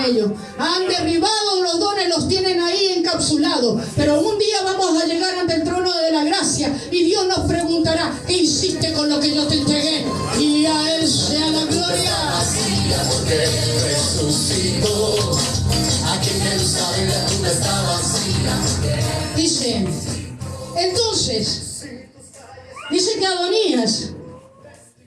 ellos, han derribado los dones, los tienen ahí encapsulados, pero un día vamos a llegar ante el trono de la gracia y Dios nos preguntará: ¿qué hiciste con lo que yo te entregué? Y a Él sea la gloria. Porque resucitó, aquí en Jerusalén la tumba está vacía. Dice, entonces, dice que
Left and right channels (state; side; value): identical; both; correlation 1.00